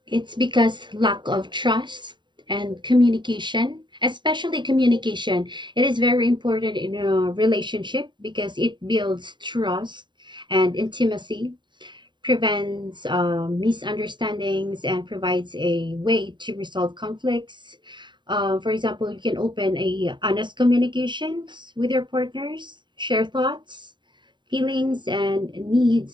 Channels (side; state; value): left; late; 0.23 ms